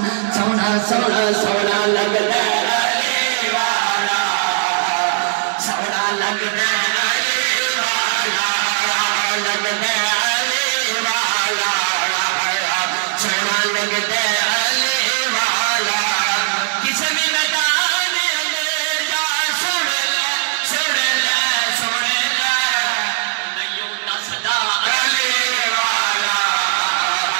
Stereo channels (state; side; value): silent; left; digital silence